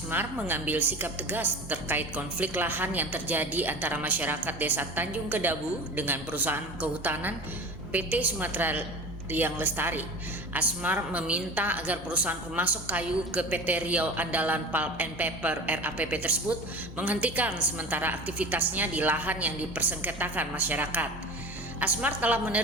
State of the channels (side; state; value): both; normal; correlation 0.34